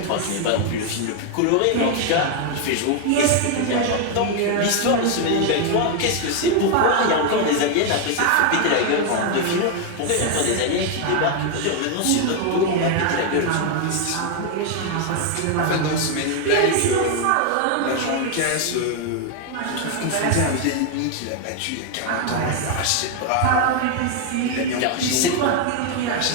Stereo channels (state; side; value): different; both; correlation 0.01